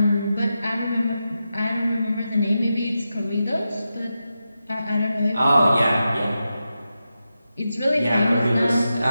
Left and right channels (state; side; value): inverted; both; correlation -0.90